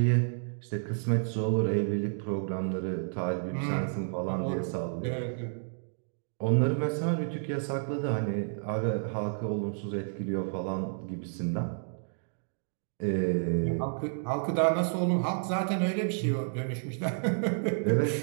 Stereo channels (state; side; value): silent; left; digital silence